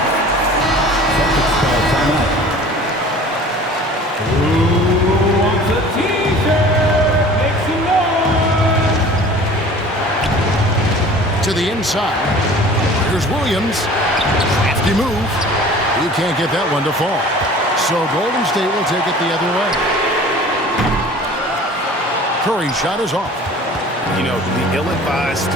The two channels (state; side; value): normal; both; correlation 0.45